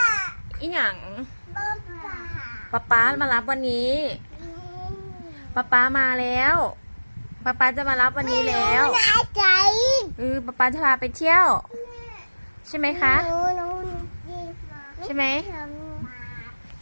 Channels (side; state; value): both; inverted; correlation -1.00